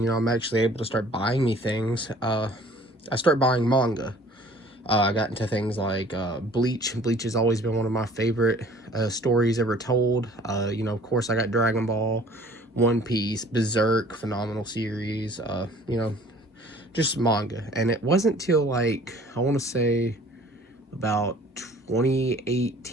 I'm actually able to start buying me things. I start buying manga. I got into things like Bleach. Bleach has always been one of my favorite stories ever told. Of course, I got Dragon Ball, One Piece, Berserk, phenomenal series. Just manga. And it wasn't till like, I want to say about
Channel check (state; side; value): normal; both; correlation 0.51